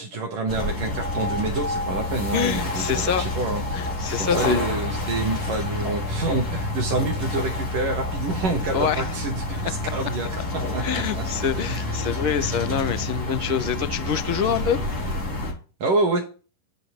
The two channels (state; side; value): late; left; 11 ms